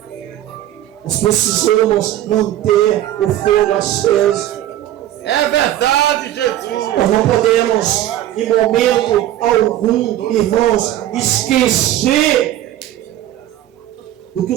Nós precisamos manter o fogo aceso. É verdade, Jesus. Nós não podemos, em momento algum, irmãos, esquecer do que o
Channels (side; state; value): left; quieter; 12.9 dB